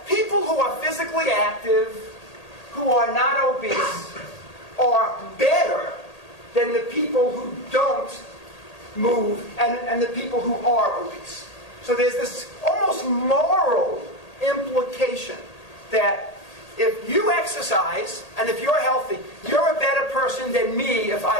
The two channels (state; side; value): late; right; 1.8 ms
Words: people who are physically active, who are not obese, are better than the people who don't move and the people who are obese. So there's this almost moral implication that if you exercise and if you're healthy, you're a better person than me if